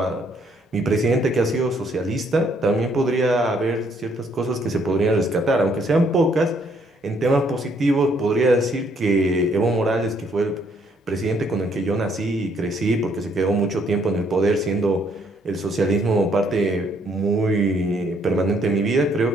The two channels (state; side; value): normal; both; correlation 0.68